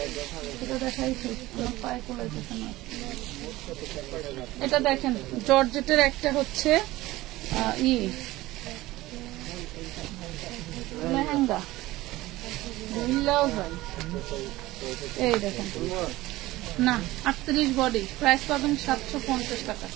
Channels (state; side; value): quieter; left; 18.0 dB